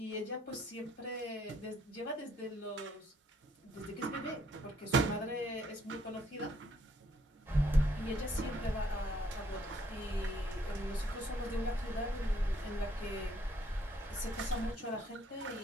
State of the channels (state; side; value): normal; both; correlation 0.68